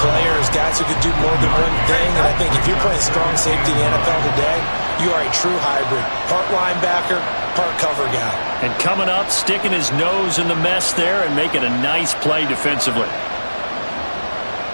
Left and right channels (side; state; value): both; inverted; correlation -1.00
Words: guys who could do more than one thing. And I think if you're playing strong safety in the NFL today, you are a true hybrid. Part linebacker, part cover guy. And coming up, sticking his nose in the mess there and making a nice play defensively.